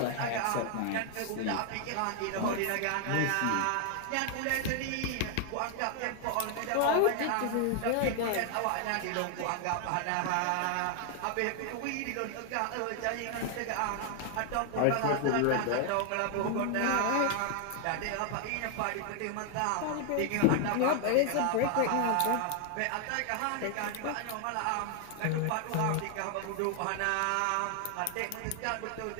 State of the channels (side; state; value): both; different; correlation 0.00